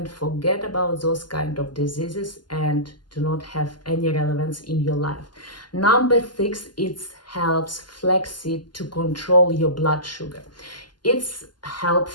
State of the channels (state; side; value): late; right; 0.71 ms